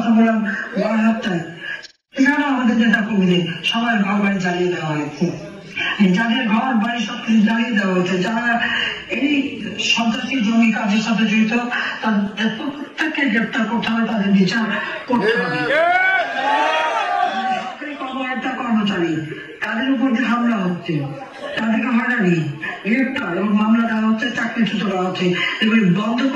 বললাম বারহাট্টায়, সেখানেও আমাদের নেতা কর্মীদের সবাই ঘর বাড়ি জ্বালিয়ে দেওয়া হয়েছে। যাদের ঘর বাড়ি সবকিছু জ্বালিয়ে দেওয়া হয়েছে, যারা এই সন্ত্রাসী জমি কাজের সাথে জড়িত তাদের প্রত্যেককে গ্রেপ্তার করতে হবে, তাদের বিচার করতে হবে। সরকারি কর্মকর্তা কর্মচারী তাদের উপর যে হামলা হচ্ছে, তাদেরকে হয়রানি, গ্রেপ্তার এবং মামলা দেওয়া হচ্ছে, চাকরিচ্যুত করা হচ্ছে, এগুলি বন্ধ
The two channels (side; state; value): both; identical; correlation 1.00